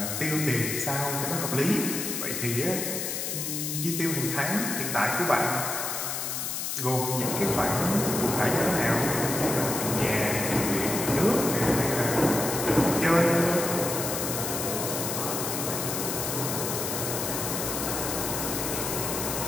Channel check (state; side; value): noise; left; hiss, 3 dB below the sound